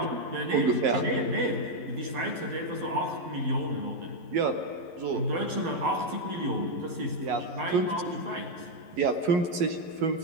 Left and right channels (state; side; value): late; left; 11 ms